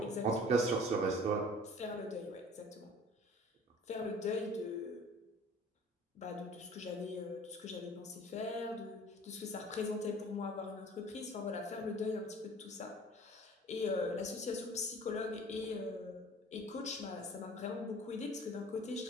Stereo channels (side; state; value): both; normal; correlation 0.47